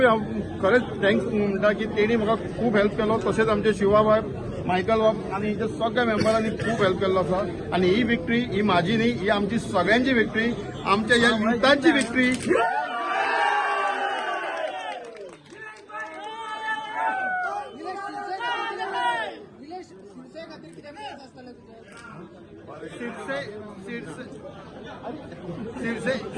हांव खरेंच थँक्स म्हणटा की तेणी म्हाका खूब हेल्प केलो. तशेंच आमचे शिवा बाब मायकल बाब आनी हिच्या सगळ्या मेंबरांनी खूब हेल्प केल्लो आसा. आनी ही विक्ट्री ही म्हाजी न्ही, ही आमची सगळ्यांची विक्ट्री, आमच्या ह्या युथांची विक्ट्री.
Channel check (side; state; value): both; identical; correlation 1.00